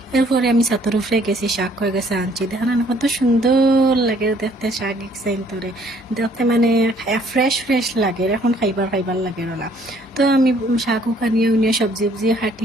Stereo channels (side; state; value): both; normal; correlation 0.62